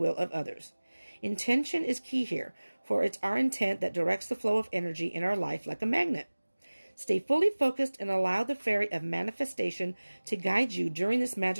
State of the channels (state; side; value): inverted; both; correlation -1.00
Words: of others. Intention is key here, for it's our intent that directs the flow of energy in our life like a magnet. Stay fully focused and allow the fairy of manifestation to guide you during this